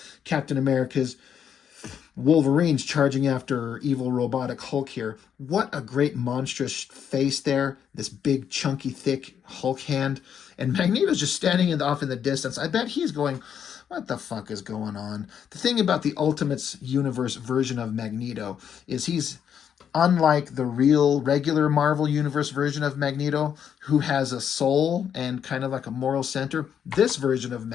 Captain America's. Wolverine's charging after evil robotic Hulk here. What a great monstrous face there. This big, chunky, thick Hulk hand. And Magneto's just standing off in the distance. I bet he's going, what the fuck is going on? The thing about the Ultimates universe version of Magneto is he's Unlike the real regular Marvel Universe version of Magneto, who has a soul and kind of like a moral center, this version of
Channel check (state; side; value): quieter; right; 8.4 dB